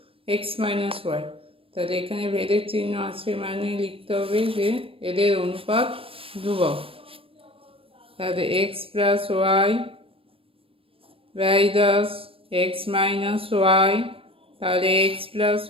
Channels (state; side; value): late; left; 0.27 ms